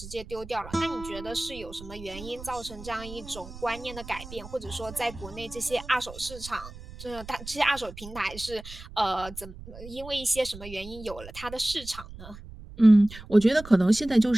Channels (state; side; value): noise; right; rumble, 15 dB below the sound